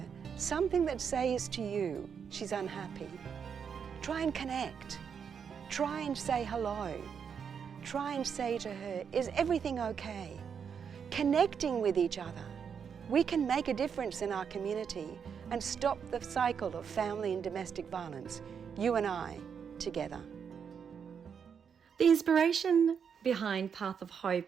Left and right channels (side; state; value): left; quieter; 7.0 dB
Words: something that says to you she's unhappy. Try and connect. Try and say hello. Try and say to her, is everything okay? Connecting with each other, we can make a difference in our community and stop the cycle of family and domestic violence, you and I, together. The inspiration behind Path of